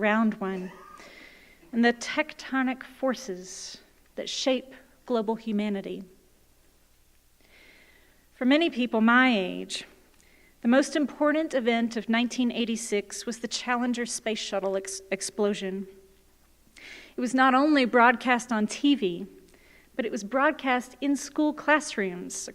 one and the tectonic forces that shape global humanity. For many people my age, the most important event of 1986 was the Challenger space shuttle explosion. It was not only broadcast on TV, but it was broadcast in school classrooms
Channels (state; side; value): identical; both; correlation 1.00